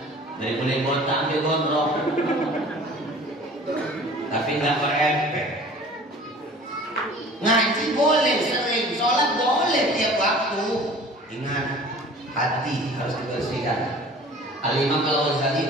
dari mulai botak sampai gondrong, tapi nggak berefek. Ngaji boleh sering, sholat boleh tiap waktu. Ingat, hati harus dibersihkan. Al-Imam Al-Ghazali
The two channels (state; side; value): normal; both; correlation 0.45